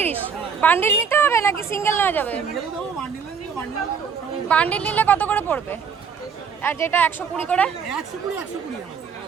বান্ডিল নিতে হবে নাকি সিঙ্গেল নেওয়া যাবে? বান্ডিল নিলে কত করে পড়বে? আর যেটা 120 করে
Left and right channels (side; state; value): left; quieter; 6.3 dB